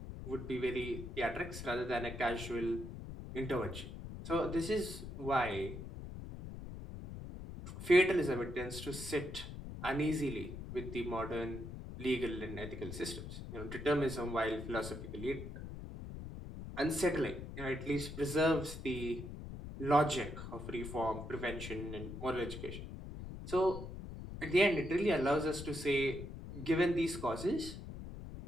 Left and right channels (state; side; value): noise; left; rumble, 9 dB below the sound